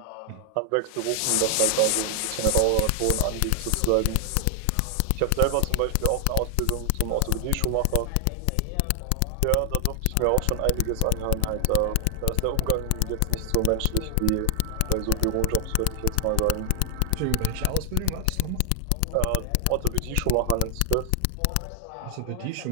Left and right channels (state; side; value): different; both; correlation 0.00